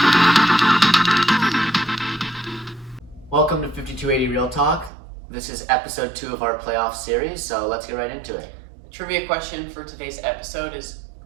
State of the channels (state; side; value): drops out; left; at 4.9 s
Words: Welcome to 5280 Real Talk. This is episode 2 of our playoff series, so let's get right into it. Trivia question for today's episode is,